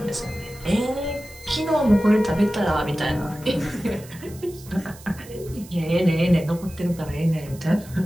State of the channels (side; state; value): right; noise; hiss, 20 dB below the sound